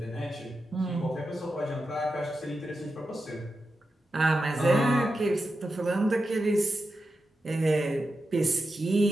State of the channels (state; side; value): normal; both; correlation 0.89